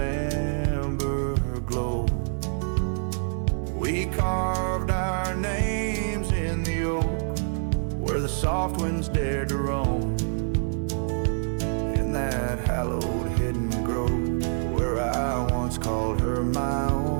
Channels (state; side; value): silent; left; digital silence